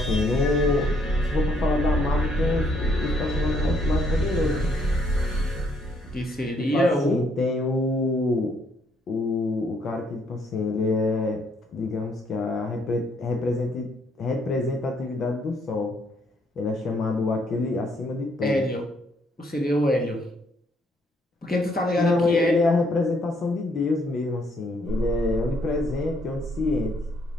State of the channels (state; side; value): normal; both; correlation 0.69